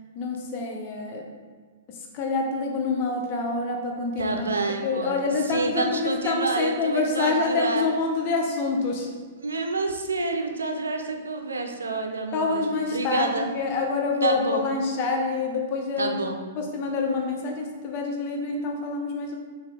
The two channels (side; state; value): both; inverted; correlation -0.34